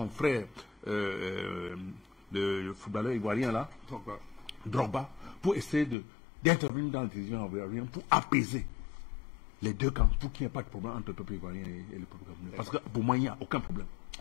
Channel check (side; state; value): right; drops out; at 6.0 s